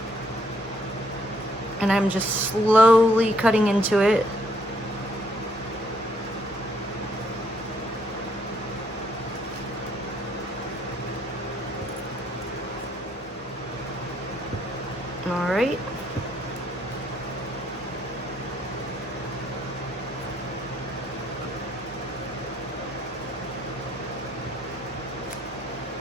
And I'm just slowly cutting into it. All right.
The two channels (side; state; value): both; normal; correlation 0.69